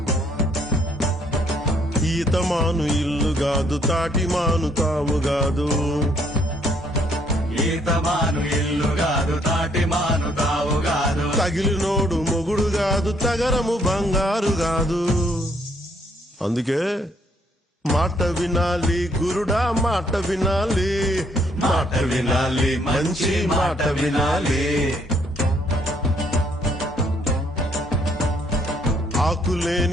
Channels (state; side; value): normal; both; correlation 0.67